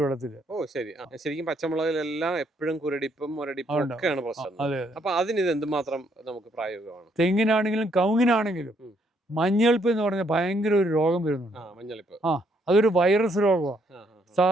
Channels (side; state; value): both; normal; correlation 0.71